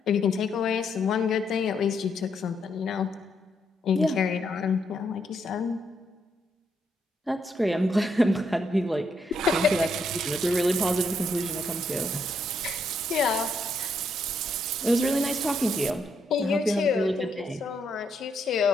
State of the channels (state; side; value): normal; both; correlation 0.76